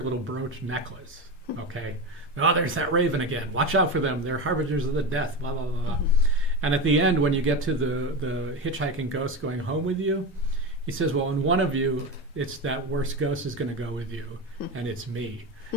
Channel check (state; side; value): normal; both; correlation 0.20